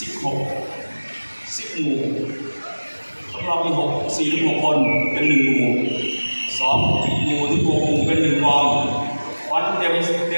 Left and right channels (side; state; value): both; inverted; correlation -1.00